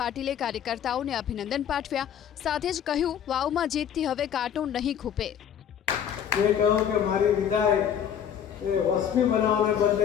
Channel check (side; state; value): right; quieter; 8.8 dB